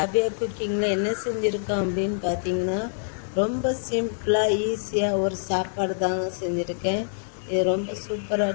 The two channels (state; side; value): silent; right; digital silence